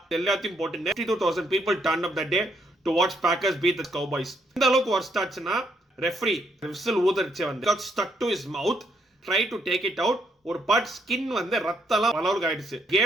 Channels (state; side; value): normal; both; correlation 0.74